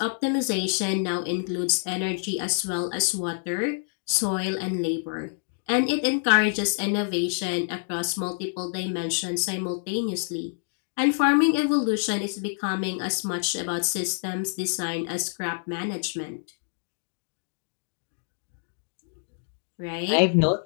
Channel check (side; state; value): right; silent; digital silence